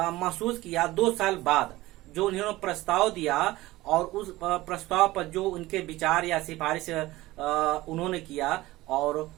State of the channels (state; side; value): quieter; left; 18.3 dB